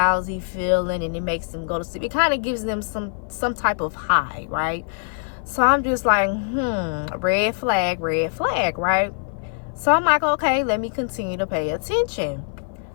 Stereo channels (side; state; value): right; silent; 56 dB below the other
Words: feeling, and it makes them go to sleep. It kind of gives them some type of high, right? So I'm just like, red flag, right? So I'm like, okay, let me continue to pay attention.